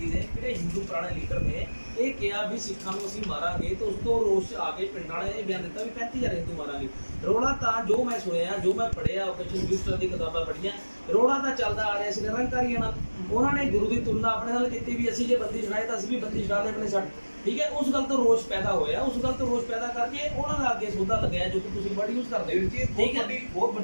ਨੇ, ਕਿਹੜੇ ਹਿੰਦੂ ਪੁਰਾਣੇ ਲੀਡਰ ਨੇ ਇਹ ਕਿਹਾ ਵੀ ਸਿੱਖਾਂ ਨੂੰ ਅਸੀਂ ਮਾਰਾਂਗੇ, ਤੇ ਉਸ ਤੋਂ ਰੋਸ਼ ਆ ਕੇ ਪਿੰਡਾਂ ਵਾਲਿਆਂ ਨੇ ਬਿਆਨ ਦਿੱਤਾ ਵੀ 35,000 ਹਿੰਦੂ ਮਾਰਾਂਗੇ। ਰੋਲਾ ਤਾਂ ਜੋ ਮੈਂ ਸੁਣਿਆ, ਜੋ ਮੈਂ ਪੜ੍ਹਿਆ, ਓਪਰੇਸ਼ਨ ਯੂਸਟਰ ਦੀ ਕਿਤਾਬਾਂ ਪੜ੍ਹੀਆਂ, ਰੋਲਾ ਤਾਂ ਚੱਲਦਾ ਆ ਰਿਹਾ ਸੀ ਨਿਰੰਕਾਰੀਆਂ ਨਾਲ। ਉਹਨਾਂ ਨੇ ਗੁਰੂ ਦੀ ਤੁਲਨਾ ਆਪਣੇ ਨਾਲ ਕੀਤੀ ਵੀ ਅਸੀਂ ਜੇ ਬੰਦੀ ਛੁਡਾਏ ਤਾਂ ਅਸੀਂ ਵੀ ਬੰਦੀ ਛੁਡਾ ਲਏ ਆਪਣੇ ਛੱਡ, ਠੀਕ ਹੈ। ਉਸ ਗੱਲ ਤੋਂ ਰੋਸ਼ ਪੈਦਾ ਹੋਇਆ, ਉਸ ਗੱਲ ਤੋਂ ਰੋਸ਼ ਪੈਦਾ ਕਰਕੇ ਉਹਨਾਂ ਦਾ ਅੱਗੇ ਸੌਦਾ ਲੱਗਿਆ ਜੋ ਕਿ ਤੁਸੀਂ ਵਰਡ ਯੂਜ਼ ਕਰਦੇ ਹੋ, ਠੀਕ ਹੈ। ਬਹੁਤ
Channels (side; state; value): both; inverted; correlation -1.00